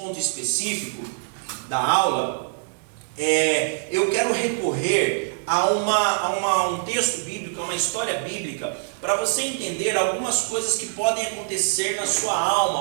específico da aula, eu quero recorrer a um texto bíblico, a uma história bíblica, para você entender algumas coisas que podem acontecer na sua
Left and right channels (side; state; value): left; silent; digital silence